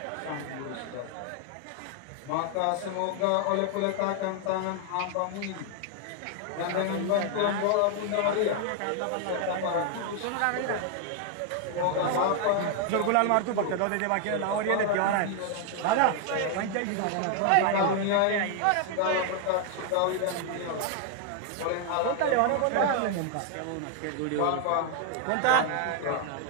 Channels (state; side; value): different; both; correlation 0.00